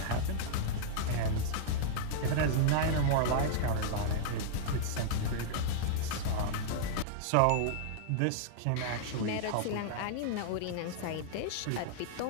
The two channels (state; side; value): different; both; correlation -0.01